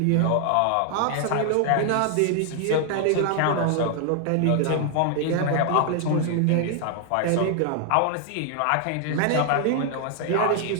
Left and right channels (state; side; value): different; both; correlation 0.00